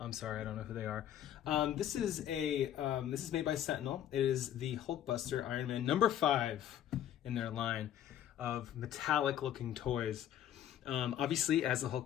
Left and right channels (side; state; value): right; quieter; 10.9 dB